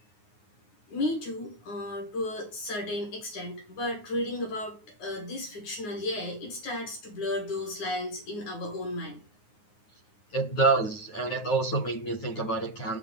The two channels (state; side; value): late; right; 9.6 ms